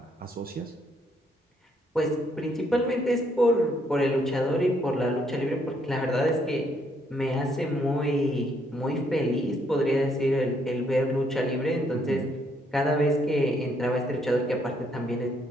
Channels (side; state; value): both; normal; correlation 0.71